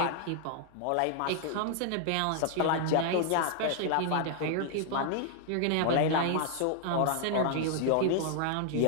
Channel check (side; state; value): both; different; correlation 0.00